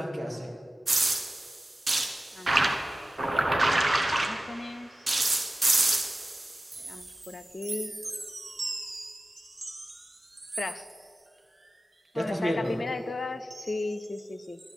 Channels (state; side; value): normal; both; correlation 0.95